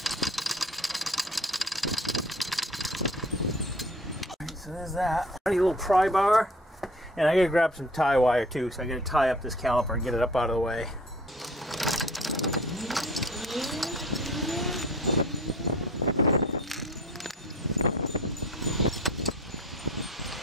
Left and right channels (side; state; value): both; normal; correlation 0.47